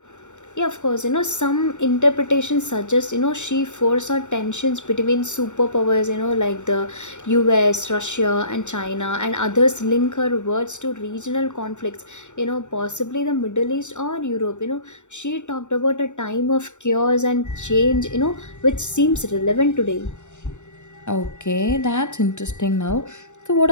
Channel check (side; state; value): right; late; 0.84 ms